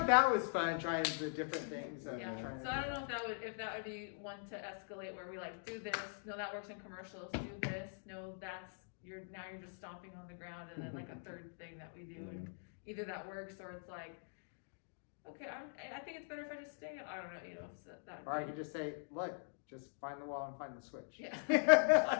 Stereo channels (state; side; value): silent; right; digital silence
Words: that was fun, trying the different things. Yeah. Trying So I don't know if that would be one to escalate where we like do this. No, that works in commercials. Do this. No, you're just stomping on the ground, and then like a third thing that we do, and either that works or it's like, okay, I think it's better if I just stay. I don't know, So that. Or I could just say, look, just find the wall and find the switch. Yeah.